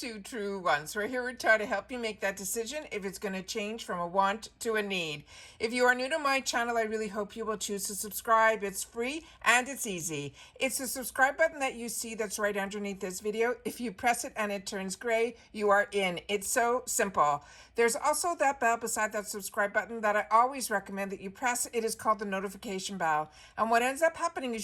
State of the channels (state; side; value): identical; both; correlation 1.00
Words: True Ones. We're here to try to help you make that decision if it's going to change from a want to a need. If you are new to my channel, I really hope you will choose to subscribe. It's free and it's easy. It's the subscribe button that you see that's right underneath this video. If you press it and it turns gray, you are in. It's so simple. There's also that bell beside that subscribe button that I always recommend that you press. It is called the notification bell. And what ends up happening